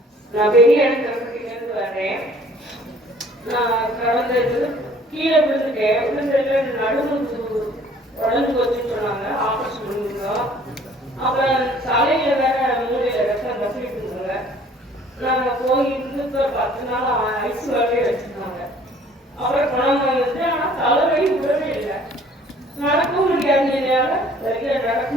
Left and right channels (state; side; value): normal; both; correlation 0.55